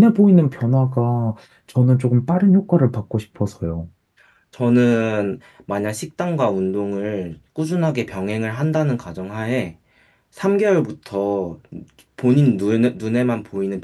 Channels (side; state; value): both; identical; correlation 1.00